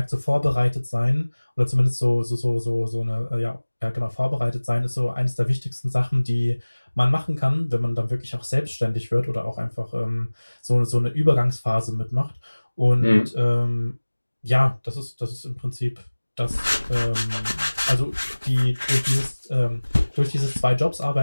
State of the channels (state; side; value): inverted; both; correlation -1.00